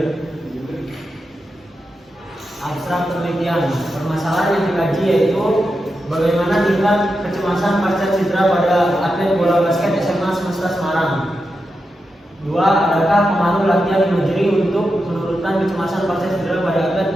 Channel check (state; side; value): normal; both; correlation 0.88